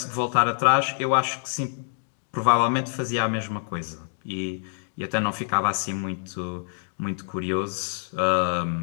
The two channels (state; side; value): silent; right; digital silence